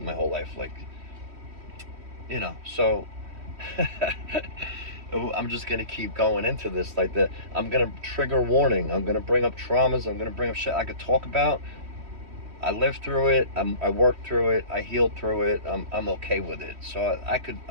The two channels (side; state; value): left; late; 3.1 ms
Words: my whole life. Like so I'm just gonna keep going into this like that. I'm gonna trigger warning. I'm gonna bring up traumas. I'm gonna bring up shit I could talk about. I lived through it. I worked through it. I healed through it. I'm okay with it. So I could